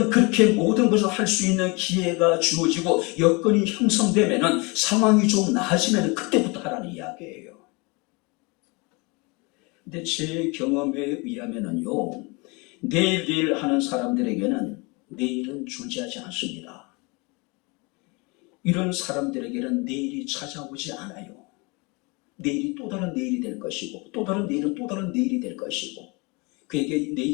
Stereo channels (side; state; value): right; quieter; 28.2 dB